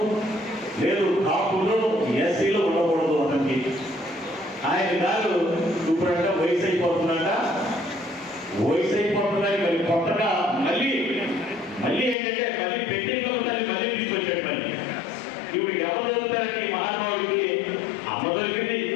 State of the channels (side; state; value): right; drops out; at 12.2 s